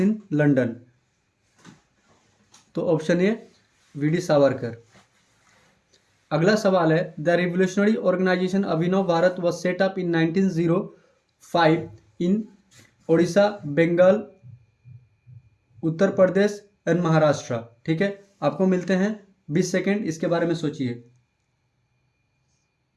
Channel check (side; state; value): both; identical; correlation 1.00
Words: London. तो ऑप्शन ए वी.डी. सावरकर। अगला सवाल है, the revolutionary organisation Abhinav Bharat was set up in 1905 in Odisha, Bengal, Uttar Pradesh and Maharashtra. ठीक है, आपको मिलते हैं 20 सेकेंड, इसके बारे में सोचिए।